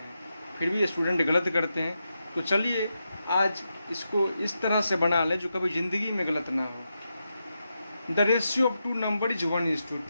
फिर भी ये स्टूडेंट गलत करते हैं। तो चलिए आज इसको इस तरह से बना लें जो कभी ज़िंदगी में गलत ना हो। The ratio of 2 number is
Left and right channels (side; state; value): both; inverted; correlation -0.87